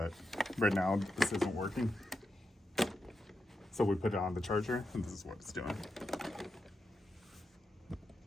right now this isn't working. So we put it on the charger and this is what it's doing.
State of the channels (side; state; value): both; normal; correlation 0.87